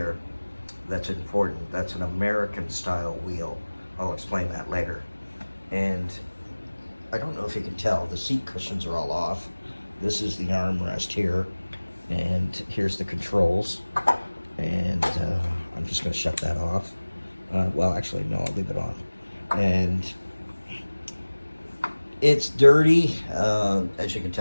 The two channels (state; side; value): inverted; both; correlation -1.00